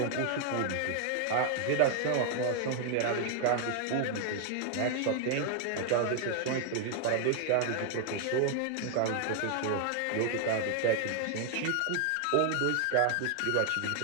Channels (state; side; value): different; both; correlation 0.00